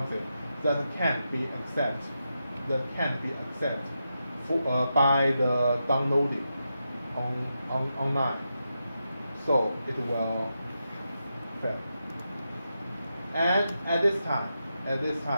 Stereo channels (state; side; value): inverted; both; correlation -0.87